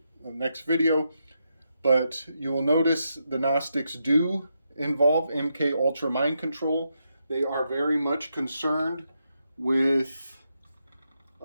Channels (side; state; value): both; inverted; correlation -0.83